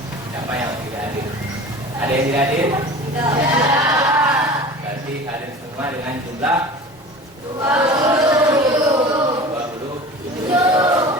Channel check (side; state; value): both; normal; correlation 0.38